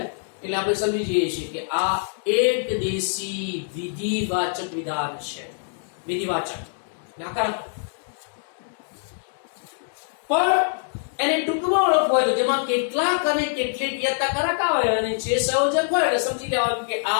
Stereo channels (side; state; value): right; silent; digital silence